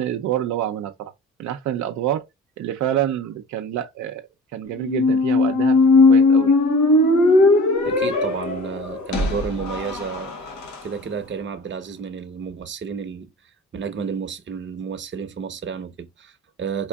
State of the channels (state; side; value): normal; both; correlation 0.41